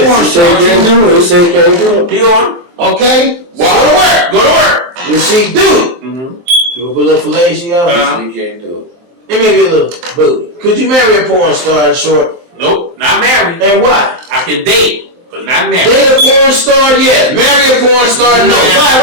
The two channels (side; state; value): left; late; 23 ms